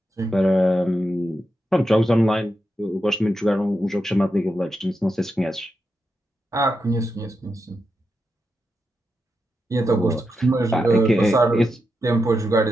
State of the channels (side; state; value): both; normal; correlation 0.87